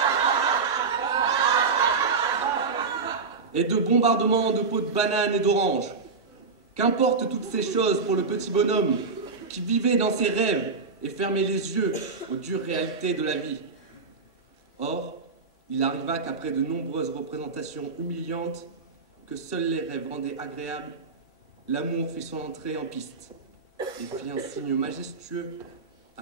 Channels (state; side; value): quieter; left; 4.6 dB